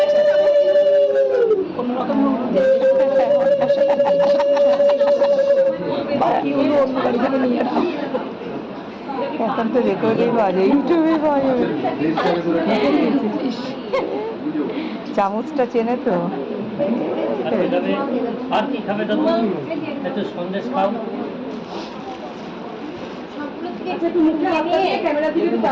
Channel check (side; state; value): both; identical; correlation 1.00